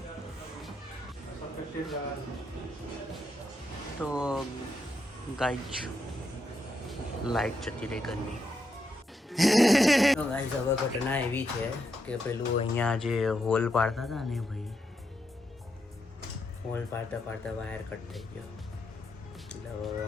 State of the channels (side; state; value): both; normal; correlation 0.82